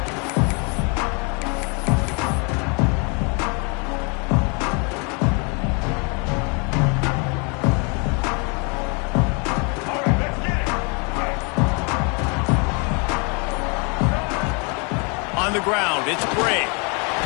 On the ground, it's Bray.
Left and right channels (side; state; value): right; quieter; 33.4 dB